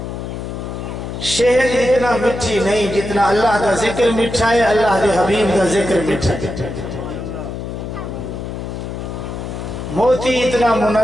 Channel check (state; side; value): noise; left; hum, 7 dB below the sound